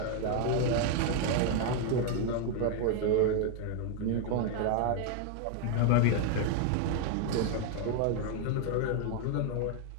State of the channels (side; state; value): both; different; correlation 0.01